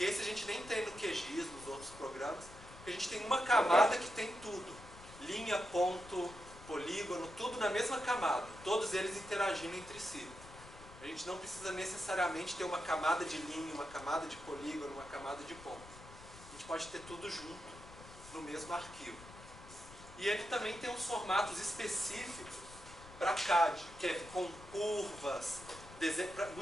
esse a gente nem tem no QGIS, nos outros programas. Porque a gente tem uma camada que tem tudo. Linha, ponto, polígono, tudo na mesma camada. Todos eles interagindo entre si. A gente não precisa necessariamente ter uma camada de linha, uma camada de polígono, uma camada de ponto. A gente pode ter tudo junto no mesmo arquivo. E ele também tem uns formatos específicos para CAD, que é com curvas,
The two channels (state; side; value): noise; left; rumble, 17 dB below the sound